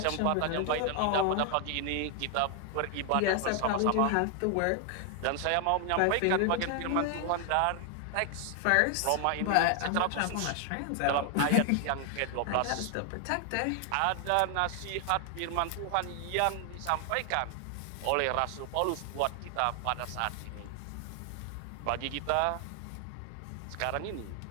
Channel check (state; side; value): different; both; correlation 0.00